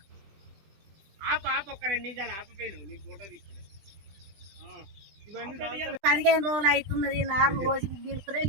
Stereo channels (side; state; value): left; late; 20 ms